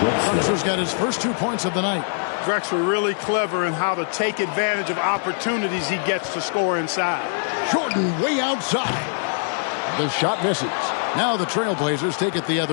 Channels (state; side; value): silent; right; digital silence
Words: Drexler's got his first 2 points of the night. Drexler really clever in how to take advantage of opportunities he gets to score inside. Jordan way outside. The shot misses. Now the Trailblazers take it the